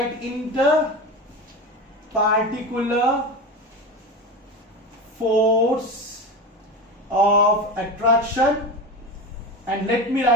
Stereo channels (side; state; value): both; normal; correlation 0.25